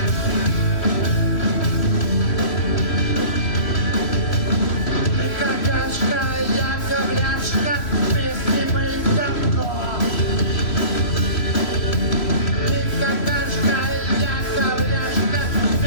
Какашка, я ковляшка, вместе мы говно. Ты какашка, я ковляшка,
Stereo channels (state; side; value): late; right; 3.0 ms